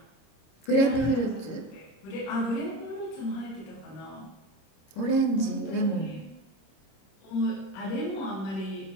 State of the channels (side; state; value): right; late; 26 ms